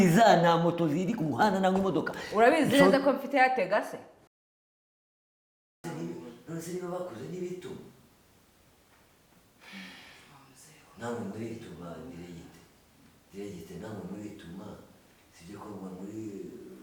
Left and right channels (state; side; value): identical; both; correlation 1.00